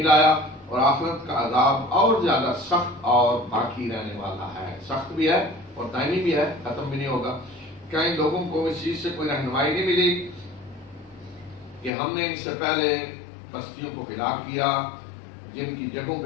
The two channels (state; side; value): drops out; right; at 11.9 s